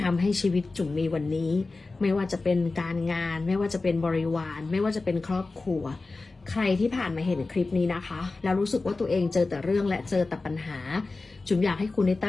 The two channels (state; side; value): quieter; right; 3.6 dB